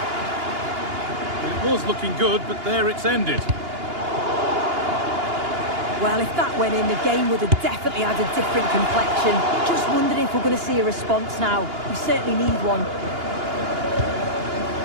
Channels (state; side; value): late; left; 2.9 ms